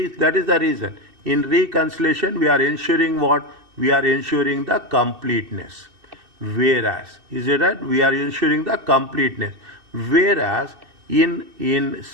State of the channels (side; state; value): left; late; 2.7 ms